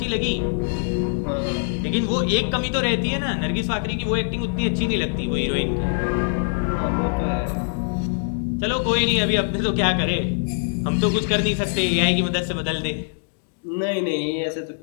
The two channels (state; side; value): silent; right; digital silence